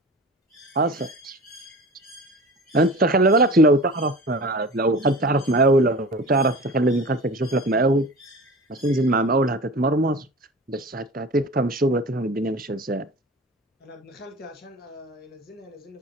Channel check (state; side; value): normal; both; correlation 0.36